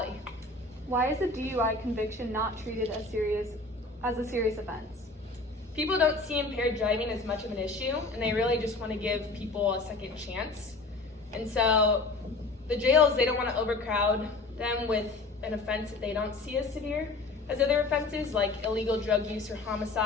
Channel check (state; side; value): quieter; right; 3.3 dB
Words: Why is a DUI conviction not treated as a serious offense? People don't see impaired driving as much of an issue, and they really just want to give people a second chance. And so the jails, they don't want to overcrowd them with an offense that they don't see as severe as other offenses, like illegal drug use or